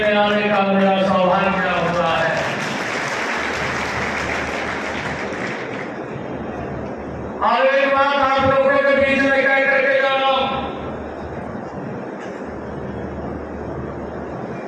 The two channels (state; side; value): identical; both; correlation 1.00